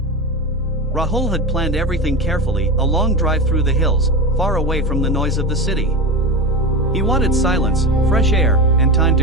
Rahul had planned everything carefully, a long drive through the hills, far away from the noise of the city. He wanted silence, fresh air, and time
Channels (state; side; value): normal; both; correlation 0.21